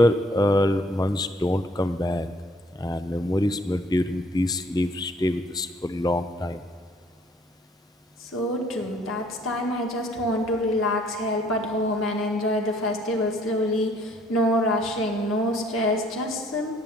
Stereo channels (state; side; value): normal; both; correlation 0.61